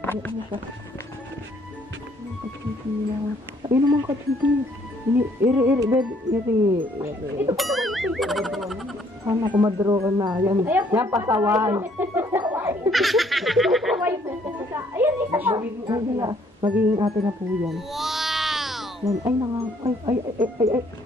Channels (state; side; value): normal; both; correlation 0.65